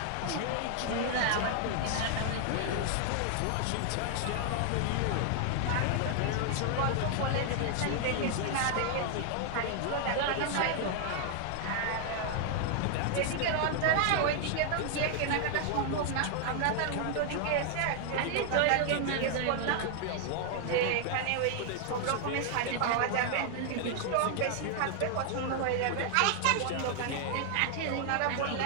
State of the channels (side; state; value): both; different; correlation 0.00